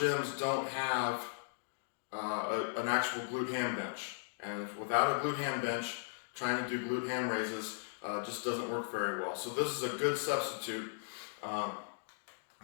don't have an actual glute-ham bench, and without a glute-ham bench, trying to do glute-ham raises just doesn't work very well. So this is a good substitute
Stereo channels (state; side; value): silent; right; digital silence